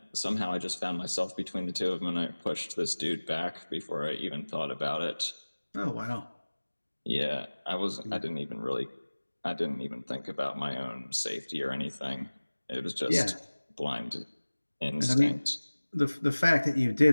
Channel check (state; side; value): inverted; both; correlation -1.00